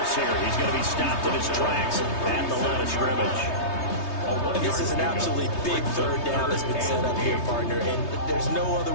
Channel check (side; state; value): right; late; 3.2 ms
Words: here. He's going to be stopped in his tracks at the line of scrimmage. And this is an absolutely big third down that's been set up here, partner, and there's no other